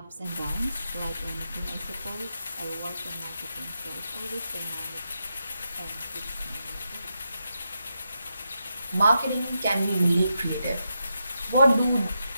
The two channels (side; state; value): both; inverted; correlation -0.85